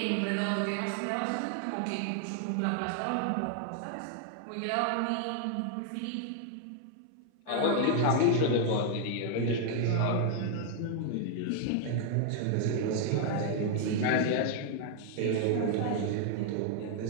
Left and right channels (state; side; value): different; both; correlation 0.00